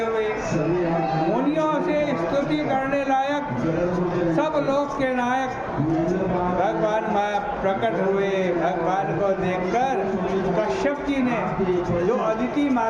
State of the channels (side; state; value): both; identical; correlation 1.00